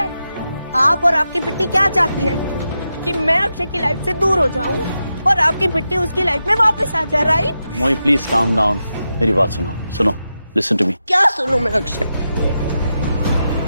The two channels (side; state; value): both; inverted; correlation -0.89